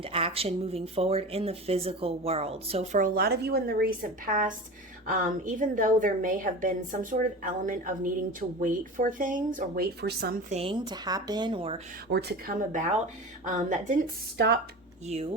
action moving forward in the physical world. So for a lot of you in the recent past, even though there may have been some sort of element of needing to wait for things or wait for something to happen or to come about, that didn't stop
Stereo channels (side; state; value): both; normal; correlation 0.31